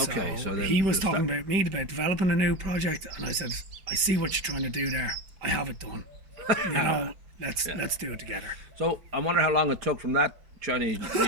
so he was talking about me about developing a new project, and I said, I see what you're trying to do there. I have it done. You know, let's do it together. So I wonder how long it took from that Chinese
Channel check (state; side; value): late; left; 5.2 ms